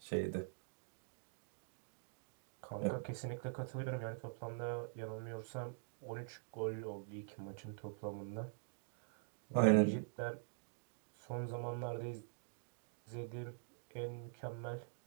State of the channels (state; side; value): silent; left; digital silence